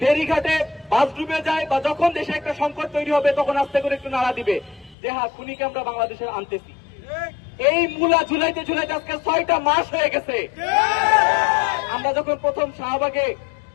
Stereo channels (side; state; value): right; drops out; at 5.0 s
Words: বাস ডুবে যায়, বা যখন দেশে একটা সংকট তৈরি হবে, তখন আস্তে করে একটু নাড়া দিবে যে হ্যাঁ, খুনিকে আমরা বাংলাদেশে আনতেছি। এই মূলা ঝুলাইতে ঝুলাইতে আজকে 6টা মাস হয়ে গেছে। আমরা যখন প্রথম শাহবাগে